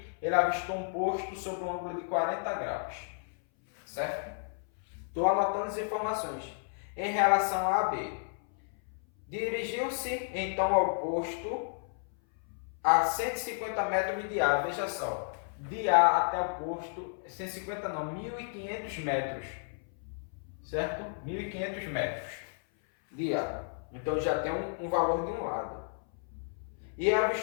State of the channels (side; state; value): right; silent; 56 dB below the other